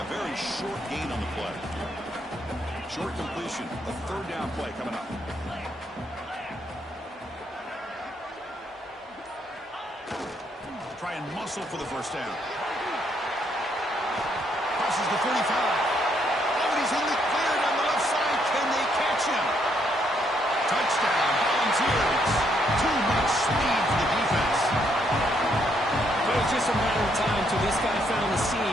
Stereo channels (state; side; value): normal; both; correlation 0.73